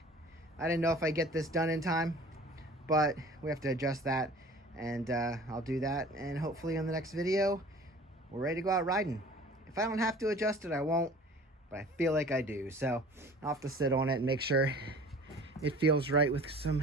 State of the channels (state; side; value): normal; both; correlation 0.46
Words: I didn't know if I get this done in time, but we have to adjust that, and I'll do that. And hopefully on the next video, we're ready to go out riding. If I don't have to adjust it, I won't, but I feel like I do. So I'll have to sit on it and make sure it feels right with